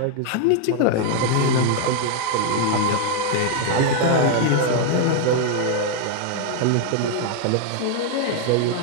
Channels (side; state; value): both; different; correlation 0.00